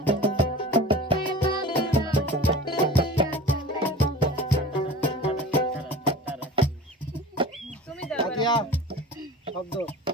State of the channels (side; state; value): both; normal; correlation 0.37